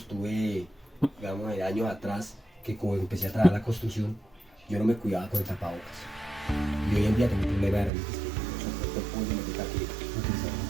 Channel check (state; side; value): drops out; left; at 7.9 s